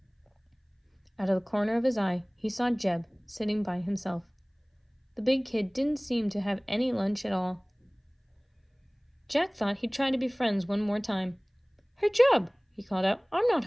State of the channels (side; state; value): both; identical; correlation 1.00